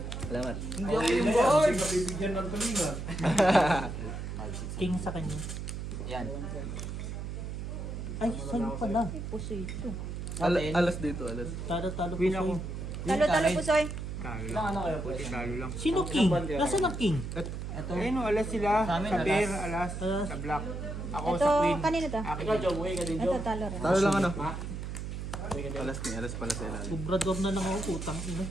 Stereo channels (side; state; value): right; noise; hum, 6 dB below the sound